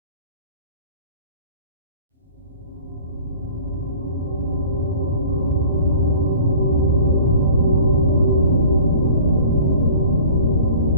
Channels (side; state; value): both; inverted; correlation -0.45